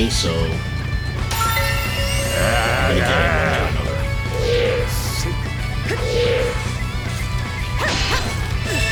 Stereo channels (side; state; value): both; identical; correlation 1.00